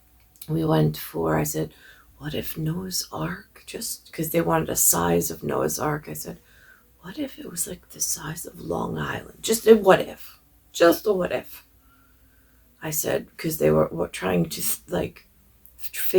for, I said, what if Noah's Ark, just because they wanted a size of Noah's Ark, I said, what if it was like the size of Long Island? Just a what if. Just a what if. I said, because they were trying to like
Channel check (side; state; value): both; identical; correlation 1.00